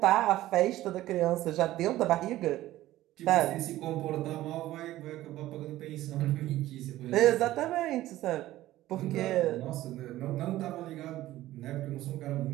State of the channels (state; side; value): quieter; left; 15.3 dB